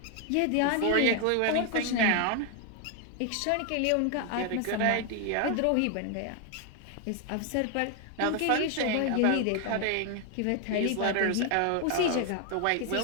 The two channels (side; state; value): both; different; correlation 0.01